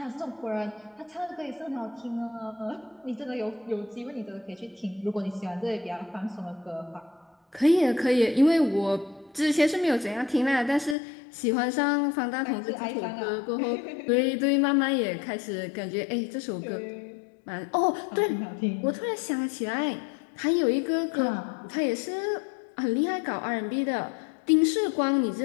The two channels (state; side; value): drops out; right; at 11.0 s